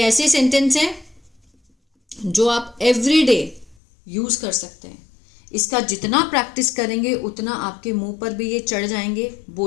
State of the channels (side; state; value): right; drops out; at 3.8 s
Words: सेंटेंस है जो आप एवरीडे यूज कर सकते हैं। इसका जितना प्रैक्टिस करेंगे उतना आपके मुंह पर भी ये चढ़ जाएंगे,